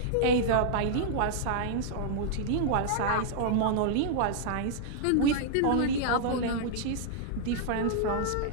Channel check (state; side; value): different; both; correlation -0.01